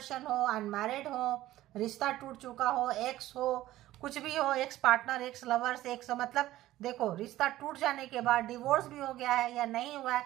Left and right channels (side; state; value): left; quieter; 15.2 dB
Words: हो, अनमैरिड हो, रिश्ता टूट चुका हो, एक्स हो, कुछ भी हो, ex partner, x lovers, x मतलब देखो रिश्ता टूट जाने के बाद डिवोर्स भी हो गया है या नहीं हुआ है